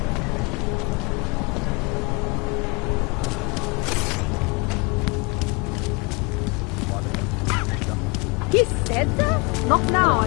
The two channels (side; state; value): right; quieter; 29.0 dB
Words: He said that? Not now,